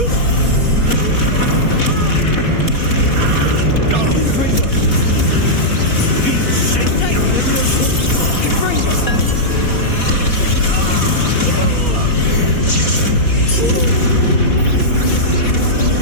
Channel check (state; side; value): late; right; 4.1 ms